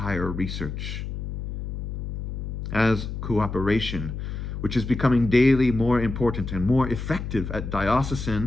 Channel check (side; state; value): left; noise; hum, 6 dB below the sound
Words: research. As cooperation, which is becoming daily more important and more effective at